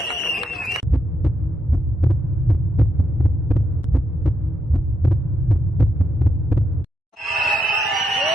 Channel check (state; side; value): normal; both; correlation 0.81